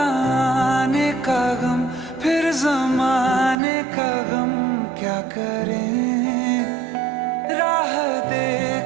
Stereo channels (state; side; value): drops out; left; at 3.6 s